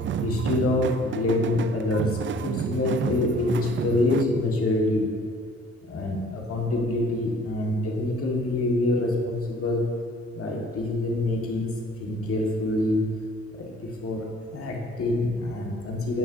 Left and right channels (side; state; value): both; normal; correlation 0.54